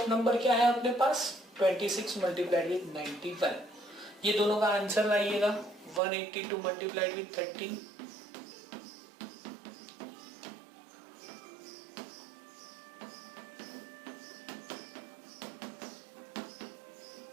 number क्या है अपने पास 26 मल्टीप्लाइड विथ 91। ये दोनों का आंसर लाइएगा 182 मल्टीप्लाइड विथ 13।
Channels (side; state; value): left; drops out; at 6.0 s